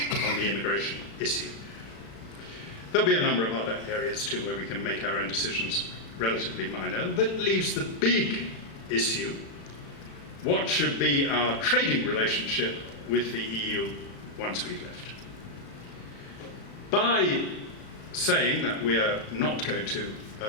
on the immigration issue. There'll be a number of other areas too where we can make our own decisions relatively minor. That leaves the big issue: what should be our trading relationship with the EU once we've left? By saying that we are not going to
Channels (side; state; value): right; late; 36 ms